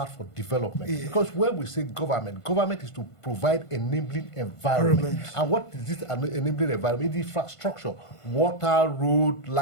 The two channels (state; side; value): late; right; 1.5 ms